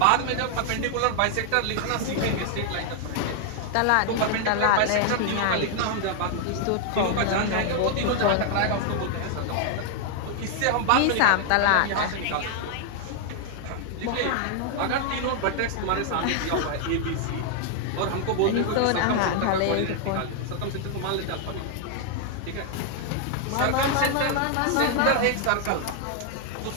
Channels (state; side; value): different; both; correlation 0.00